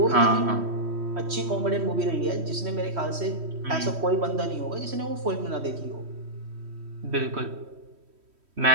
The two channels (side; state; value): left; late; 3.1 ms